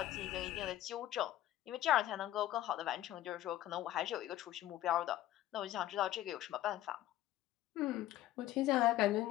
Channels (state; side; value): quieter; right; 14.0 dB